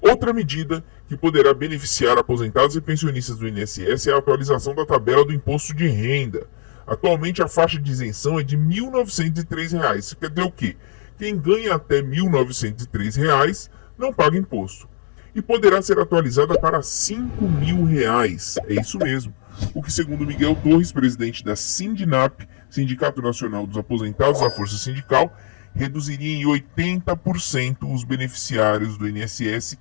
medida que poderá beneficiar aposentados e pensionistas do INSS é a atualização da tabela do imposto de renda. Atualmente a faixa de isenção é de R$ 1.903. Isso quer dizer o quê? Quem ganha até R$ 1.903 não paga imposto. E poderá ser atualizada para R$ 5.000. É isso mesmo. O que, segundo Miguel Torres, presidente da Sindinap, Sindicato Nacional dos Aposentados da Força Sindical, reduziria em 80% os beneficiários do INSS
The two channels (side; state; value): right; silent; digital silence